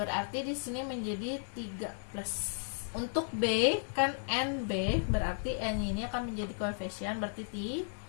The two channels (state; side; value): silent; right; digital silence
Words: di sini menjadi 3 plus. Untuk B kan nb, berarti n ini akan menjadi koefisien, berarti